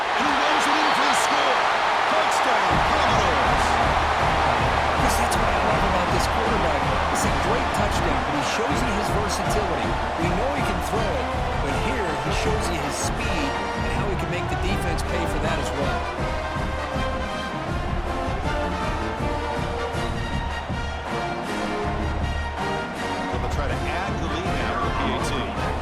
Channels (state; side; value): identical; both; correlation 1.00